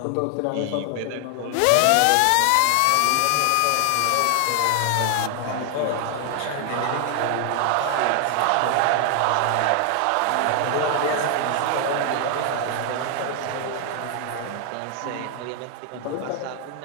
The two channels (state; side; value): different; both; correlation 0.00